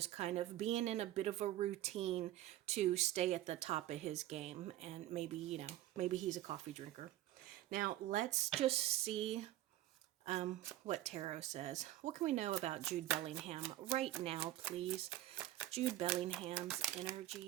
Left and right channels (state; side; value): quieter; left; 14.2 dB